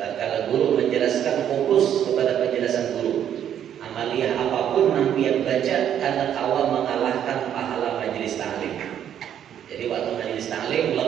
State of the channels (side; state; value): left; quieter; 9.8 dB